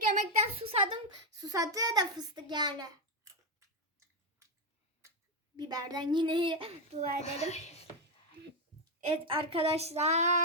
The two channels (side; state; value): both; normal; correlation 0.04